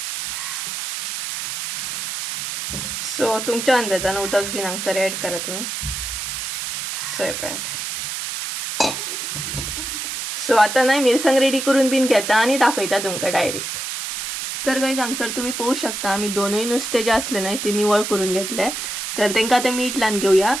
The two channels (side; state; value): right; noise; hiss, 4 dB below the sound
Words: सो तुमच्या अंदाजान उदक बीन हांगसर एड करा तुम्ही. सो पळयात. सो आता न्हय मिरसांग रेडी करून बीन घेता आणि दाखयता तुमकां डायरेक्ट. तर गाईज हांगसर तुम्ही पळोवं शकता आमी दोनूय नुस्तें जे असले न्हय ते निवळ करून घेतले. तर तेंकां आतां मीठ लावन घेवया.